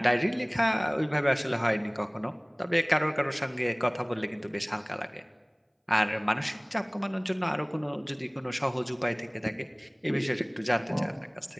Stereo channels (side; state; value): both; identical; correlation 1.00